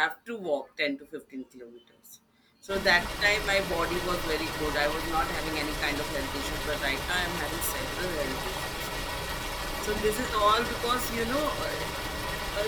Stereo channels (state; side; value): identical; both; correlation 1.00